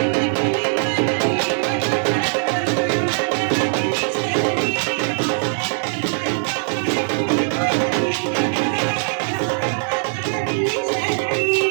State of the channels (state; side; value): silent; left; 64 dB below the other